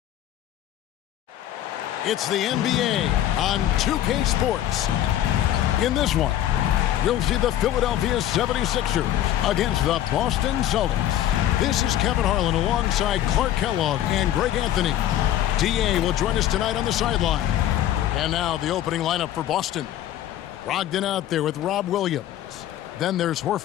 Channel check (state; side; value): quieter; right; 12.2 dB